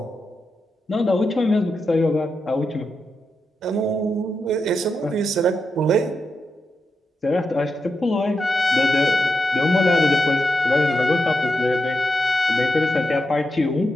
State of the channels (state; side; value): normal; both; correlation 0.86